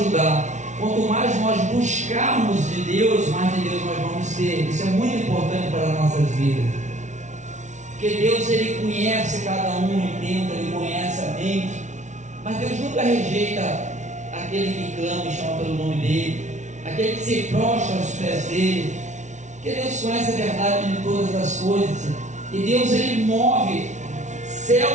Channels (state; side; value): late; left; 0.35 ms